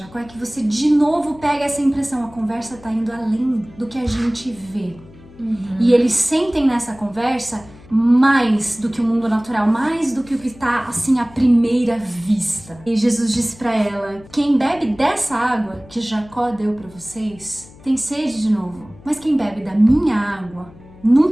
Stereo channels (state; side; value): noise; left; hum, 22 dB below the sound